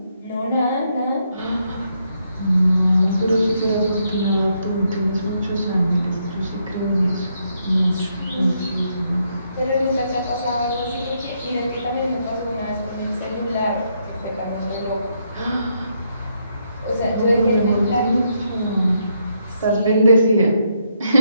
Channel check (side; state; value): both; inverted; correlation -0.76